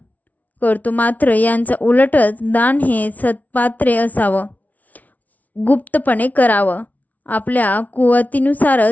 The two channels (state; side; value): late; right; 0.074 ms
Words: करतो मात्र यांचा उलटच. दान हे सत्पात्रे असावं, गुप्तपणे करावं, आपल्या